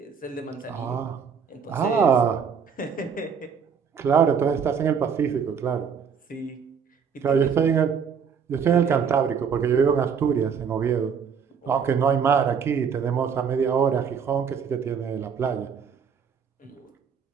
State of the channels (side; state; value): left; quieter; 6.7 dB